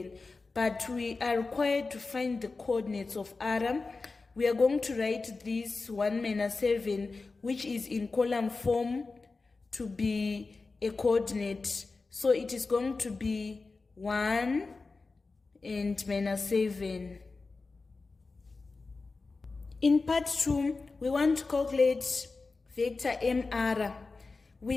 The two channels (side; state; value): right; quieter; 3.9 dB